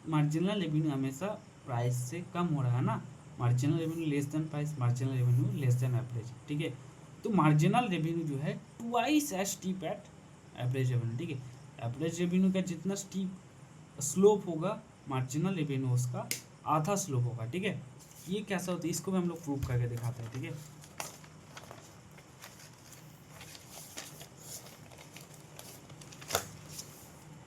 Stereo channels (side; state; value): both; identical; correlation 1.00